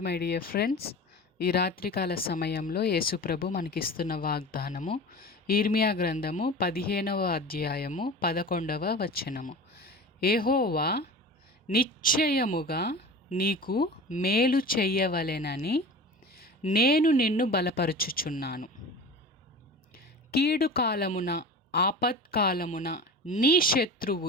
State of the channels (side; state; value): both; normal; correlation 0.34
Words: my dear friends. ఈ రాత్రికాల సమయంలో యేసుప్రభు మనకిస్తున్న వాగ్దానము ఇర్మియా గ్రంథము 15వ అధ్యాయము 11వ వచనము. యెహోవా నిశ్చయముగా నీకు మేలు చెయ్యవలెనని నేను నిన్ను బలపరుచుచున్నాను. కీడు కాలమున ఆపత్కాలమున నీ